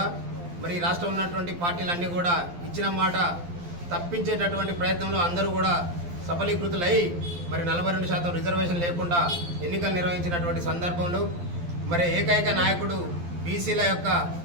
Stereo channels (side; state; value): left; late; 12 ms